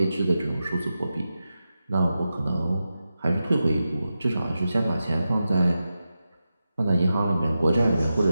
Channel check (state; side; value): inverted; both; correlation -0.91